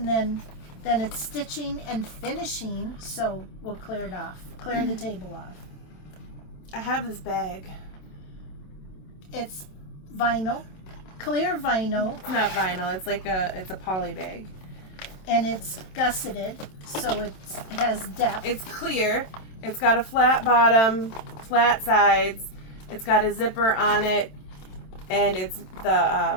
then it's stitching and finishing, so we'll clear it off. Clear the table off. I have this bag. It's vinyl, clear vinyl, It's not vinyl. It's like it's a poly bag. and it's gusseted, so it has depth. It's clear. It's got a flat bottom, flat sides. It's got a zipper on it, and it's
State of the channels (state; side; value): late; right; 27 ms